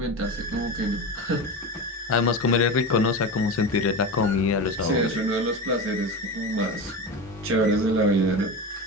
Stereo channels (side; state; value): both; normal; correlation 0.24